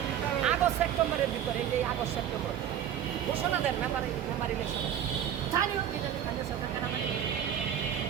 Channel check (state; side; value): quieter; left; 10.0 dB